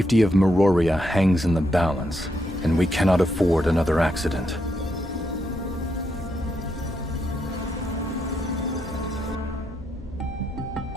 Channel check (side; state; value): both; normal; correlation 0.80